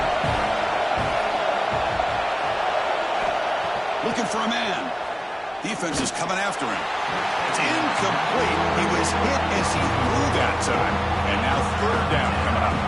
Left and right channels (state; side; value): identical; both; correlation 1.00